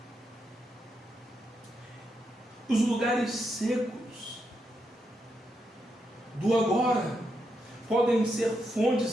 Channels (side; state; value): both; normal; correlation 0.83